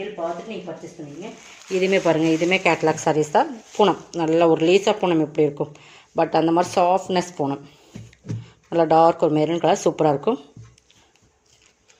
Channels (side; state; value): both; identical; correlation 1.00